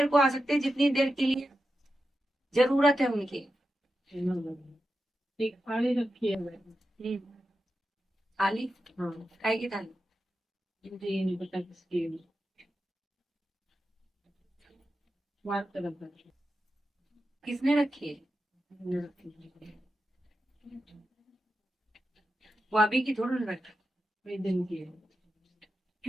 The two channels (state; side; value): normal; both; correlation 0.90